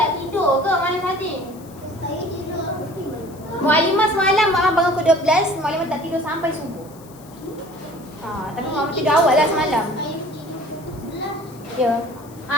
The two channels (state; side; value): noise; left; hiss, 24 dB below the sound